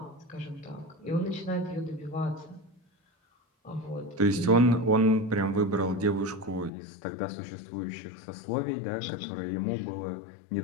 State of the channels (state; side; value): drops out; right; at 6.7 s